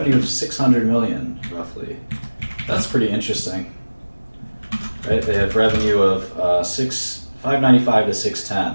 of 600 million, roughly. That's pretty interesting, right? They have revenue of 595 to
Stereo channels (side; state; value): both; inverted; correlation -1.00